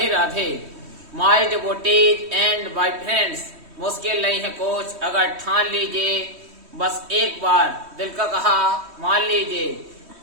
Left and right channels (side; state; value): left; late; 3.2 ms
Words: Radhe. My devotees and my friends, मुश्किल नहीं है कुछ अगर ठान लीजिए, बस एक बार दिल का कहा मान लीजिए।